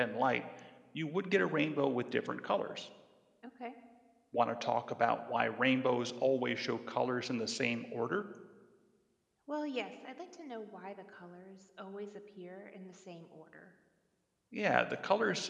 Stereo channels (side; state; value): both; identical; correlation 1.00